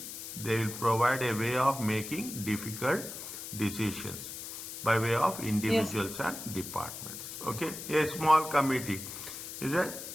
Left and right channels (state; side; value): noise; left; hiss, 9 dB below the sound